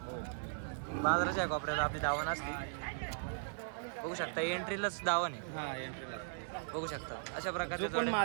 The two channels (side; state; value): left; silent; digital silence